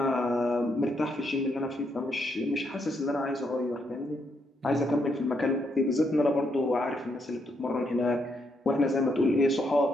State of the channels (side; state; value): both; normal; correlation 0.77